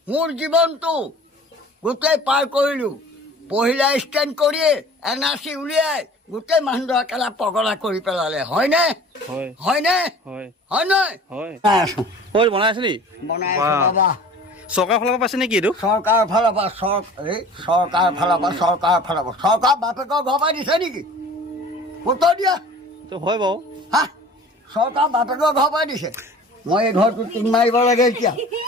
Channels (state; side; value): normal; both; correlation 0.45